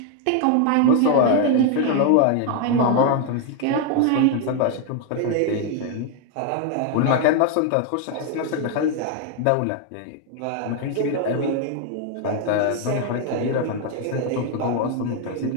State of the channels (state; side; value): different; both; correlation 0.00